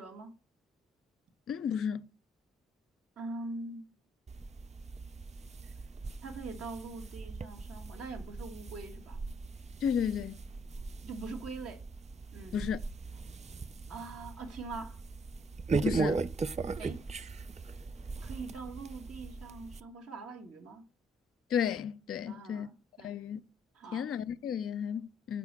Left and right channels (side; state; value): both; normal; correlation 0.68